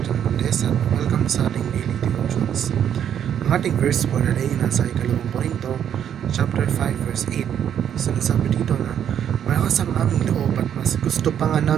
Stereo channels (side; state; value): left; quieter; 9.3 dB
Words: John Valdez, at welcome sa ating daily devotions. Ang ating verse for the day nasa ikalawang Korinto, chapter 5, verse 8. Sinasabi dito na, malakas ang aming loob at mas gusto pa nga